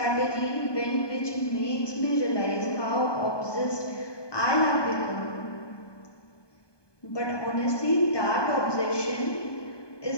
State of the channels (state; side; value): late; right; 1.2 ms